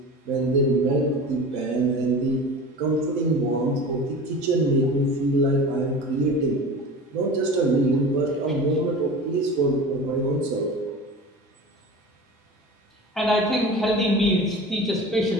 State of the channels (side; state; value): both; normal; correlation 0.35